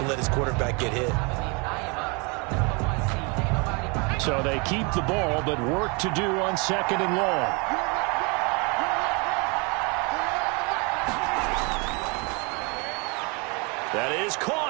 let his quarterback get hit. So they keep the ball, but work to do on second and long. That is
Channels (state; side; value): quieter; left; 31.1 dB